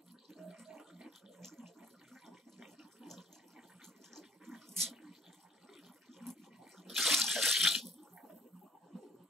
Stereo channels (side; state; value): both; normal; correlation 0.58